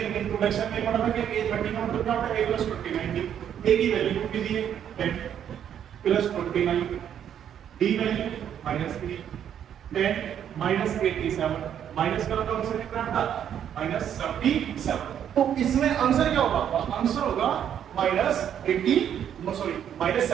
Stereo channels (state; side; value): quieter; left; 9.4 dB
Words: इंट्रोडक्शन में पढ़ा था कि a 30 का मतलब क्या होता है a प्लस 29। a की वैल्यू कितनी दी है 10 plus 29, d value -3, 10 minus 87 minus करो तो आंसर कितना आता -77। तो इसमें आंसर क्या होगा, आंसर होगा